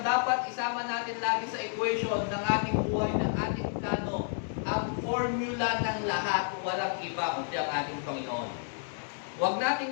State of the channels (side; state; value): right; silent; 57 dB below the other